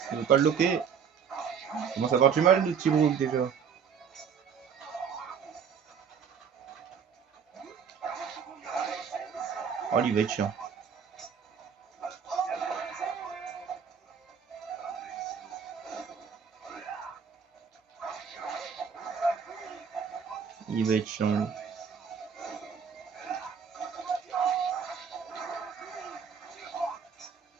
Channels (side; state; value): left; quieter; 6.9 dB